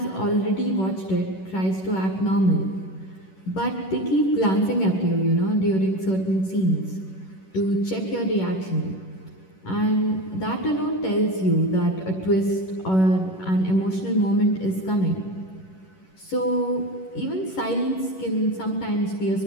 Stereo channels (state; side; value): late; right; 11 ms